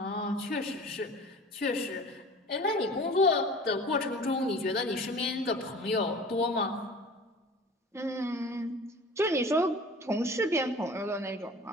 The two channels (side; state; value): both; normal; correlation 0.42